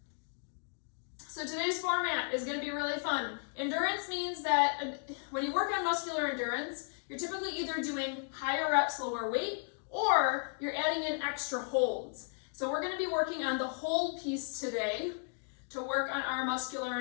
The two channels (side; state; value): right; silent; 55 dB below the other